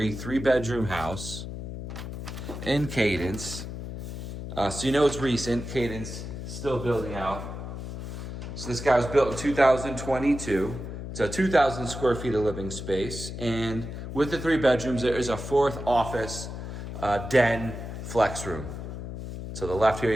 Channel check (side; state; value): left; noise; hum, 8 dB below the sound